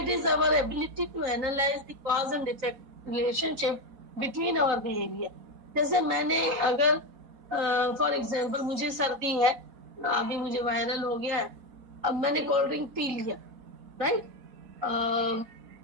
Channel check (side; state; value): left; late; 4.1 ms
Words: is our ability to analyse the cause and effect relationship between our behaviour. जैसे मैंने अगर फॉर एग्जाम्पल मुझे सर्दी है, अभी मुझे वायरल हो गया है, अब मैंने कोल्ड ड्रिंक पी लिया, राइट,